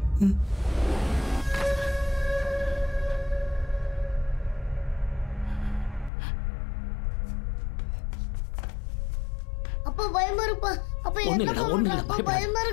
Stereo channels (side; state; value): right; drops out; at 6.1 s